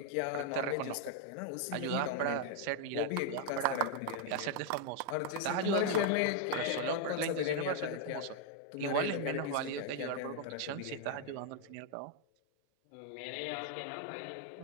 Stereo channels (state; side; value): different; both; correlation 0.00